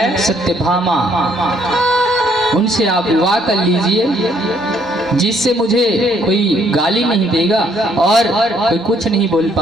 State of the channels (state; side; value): normal; both; correlation 0.67